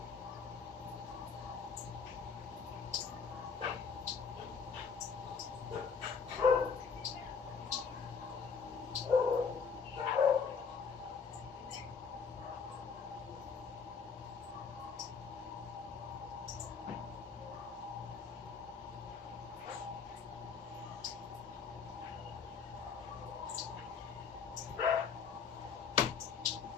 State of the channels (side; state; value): right; quieter; 5.9 dB